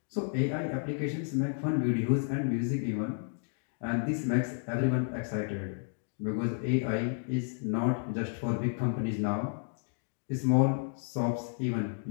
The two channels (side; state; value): right; silent; digital silence